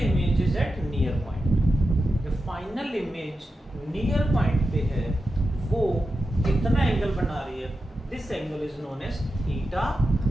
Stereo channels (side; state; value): both; normal; correlation 0.90